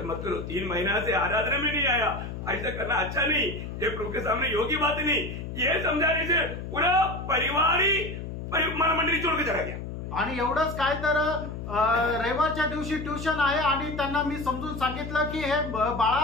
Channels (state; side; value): noise; left; hum, 8 dB below the sound